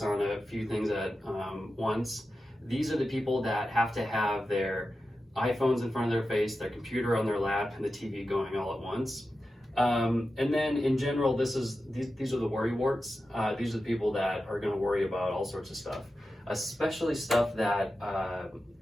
on a few things at once. These are the people that have to have their iPhones in front of their face, their computer on their lap, and the TV going all at once. And then in general, these are the worry warts. These are the people that are going to worry about all sorts of stuff, especially stuff that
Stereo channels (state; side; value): normal; both; correlation 0.92